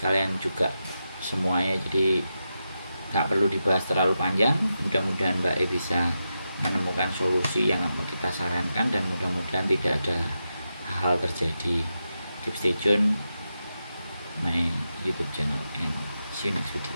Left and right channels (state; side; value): inverted; both; correlation -0.88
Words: juga semuanya, jadi nggak perlu dibahas terlalu panjang. Mudah-mudahan Mbak E bisa menemukan solusi yang kita sarankan, dan mudah-mudahan tidak ada hal terjadi. Keep stay tune my YouTube channel and see you next video.